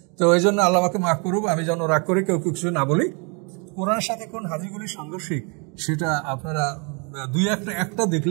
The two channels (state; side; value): quieter; left; 34.2 dB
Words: তো এই জন্য আল্লাহ আমাকে মাফ করুক, আমি যেন রাগ করে কেউ কিছু না বলি। কোরআনের সাথে কোন হাদিসগুলি সাংঘর্ষিক সেটা আপনারা দুই একটা